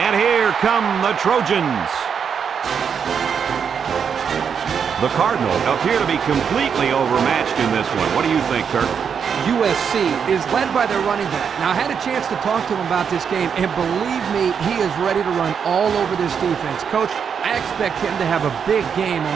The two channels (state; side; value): quieter; left; 7.0 dB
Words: here come the Trojans. The Cardinals appear to be completely overmatched in this one. What do you think, Kirk? USC is led by their running back. Now, I had a chance to talk to him about this game, and believe me, he is ready to run all over this defense. Coach, I expect him to have a big game on